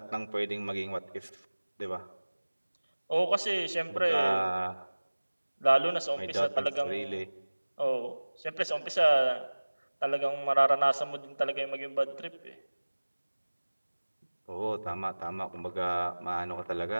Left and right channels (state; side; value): inverted; both; correlation -1.00